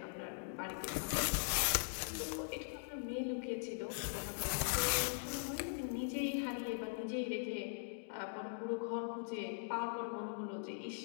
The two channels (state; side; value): silent; right; digital silence